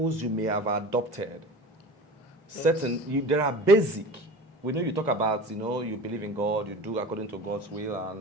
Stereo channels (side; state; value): both; normal; correlation 0.36